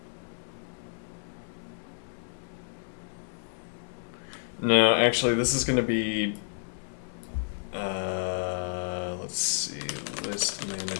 no, actually this is going to be let's see, list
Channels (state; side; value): silent; right; digital silence